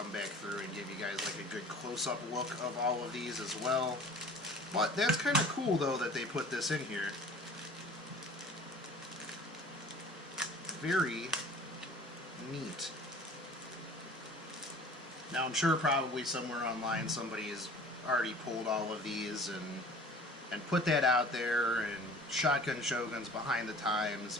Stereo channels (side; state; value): both; normal; correlation 0.46